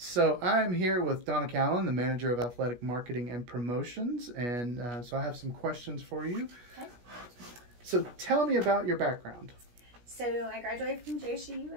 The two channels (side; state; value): left; late; 17 ms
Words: So I'm here with Donna Callan, the Manager of Athletic Marketing and Promotions, and so I have some questions for you. Okay. So tell me about your background. So I graduated from JSU